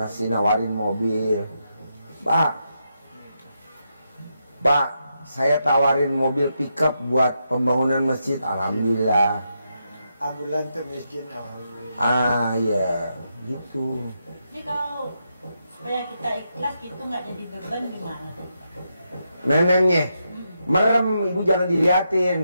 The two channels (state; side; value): inverted; both; correlation -0.83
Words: nawarin mobil. Pak, saya tawarin mobil pickup buat pembangunan masjid. Alhamdulillah. Ambulan tuh miskin, alhamdulillah. Ah ya, gitu. Jadi kalau supaya kita ikhlas gitu nggak jadi beban gimana? Nenennya merem, ibu jangan